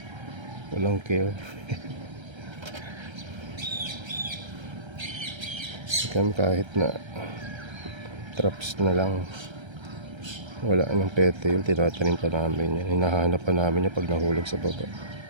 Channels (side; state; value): left; late; 1.3 ms